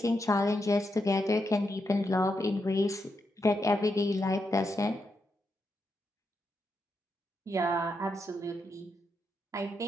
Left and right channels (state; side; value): normal; both; correlation 0.83